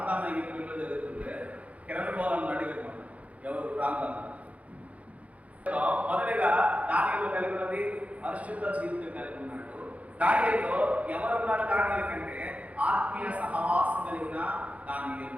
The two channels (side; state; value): left; late; 0.066 ms